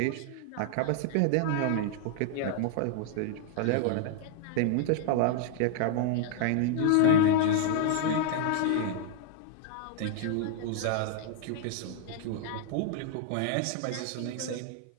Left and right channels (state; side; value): different; both; correlation -0.01